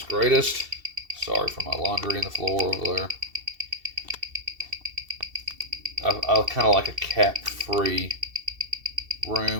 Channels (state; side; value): late; left; 2.7 ms